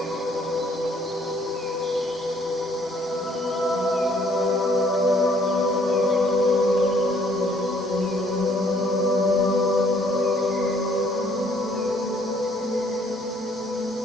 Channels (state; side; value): normal; both; correlation 0.63